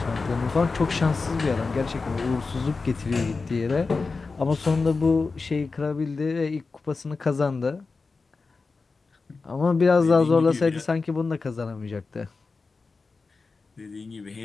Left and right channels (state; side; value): quieter; right; 4.2 dB